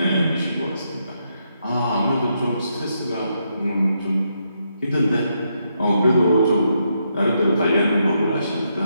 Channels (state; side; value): inverted; both; correlation -0.80